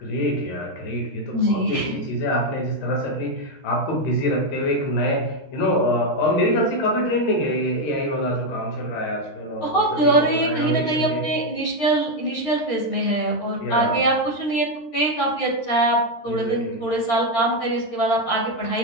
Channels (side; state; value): right; late; 13 ms